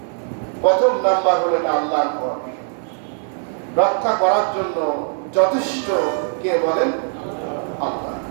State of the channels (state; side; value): silent; left; 65 dB below the other